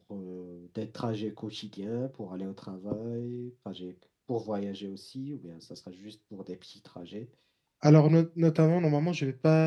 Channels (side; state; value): both; identical; correlation 1.00